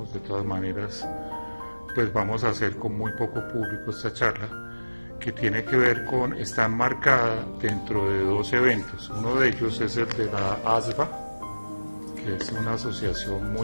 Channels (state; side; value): inverted; both; correlation -1.00